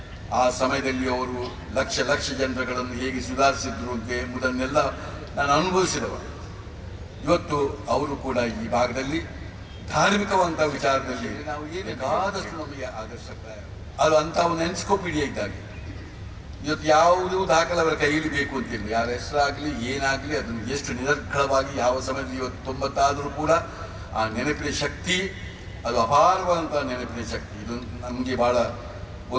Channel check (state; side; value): identical; both; correlation 1.00